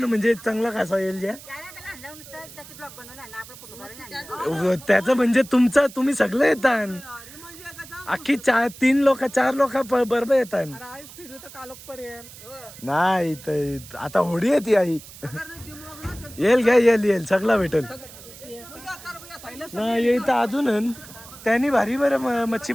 म्हणजे चांगला कसा येईल ज्या त्याचं म्हणजे तुमचं तुम्ही सगळे येतात. अख्खी 4 लोक बरोबर येतात. नाही तर आता होडी येते आई. येईल घ्या येईल सगळा भेटेल. नाही येतं अजून त्यांनी भारी बरं मच्छी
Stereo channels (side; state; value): right; noise; hiss, 17 dB below the sound